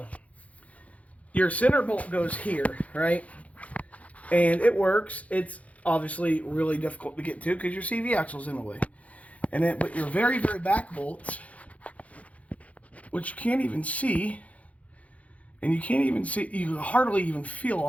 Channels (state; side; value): late; right; 0.067 ms